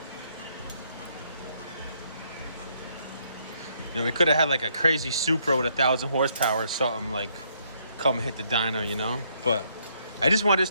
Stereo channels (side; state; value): both; inverted; correlation -0.71